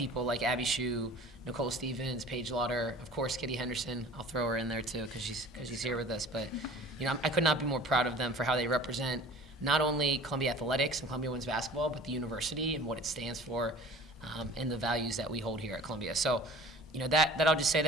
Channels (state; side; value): normal; both; correlation 0.45